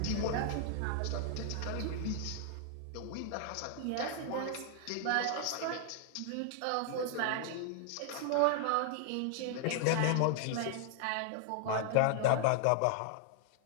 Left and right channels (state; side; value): different; both; correlation 0.00